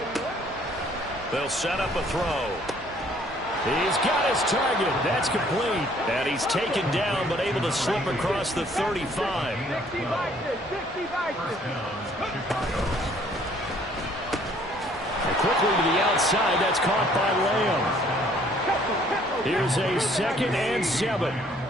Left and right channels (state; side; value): normal; both; correlation 0.61